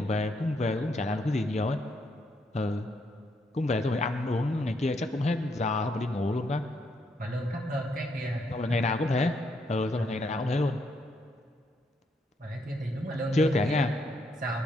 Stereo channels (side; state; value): both; normal; correlation 0.75